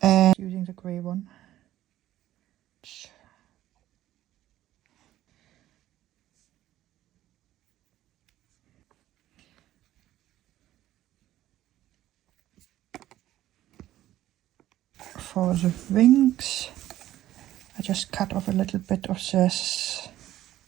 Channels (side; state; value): left; quieter; 13.8 dB